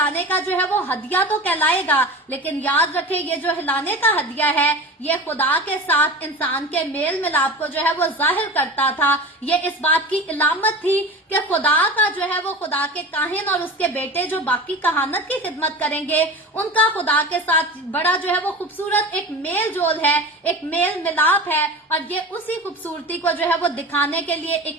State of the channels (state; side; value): normal; both; correlation 0.32